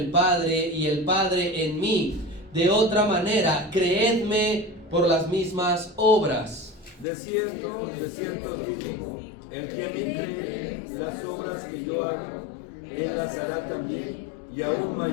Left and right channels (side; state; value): right; drops out; at 7.1 s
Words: Padre y el Padre en mí. De otra manera, creedme por las mismas obras. De cierto os digo, el que me cree, las obras que yo hago, Él las hará también, y aún